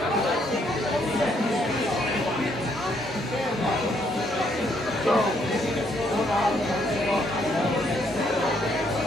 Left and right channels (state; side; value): normal; both; correlation 0.71